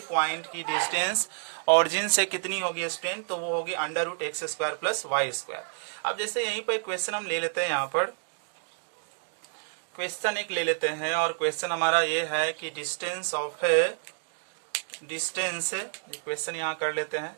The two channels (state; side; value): silent; left; digital silence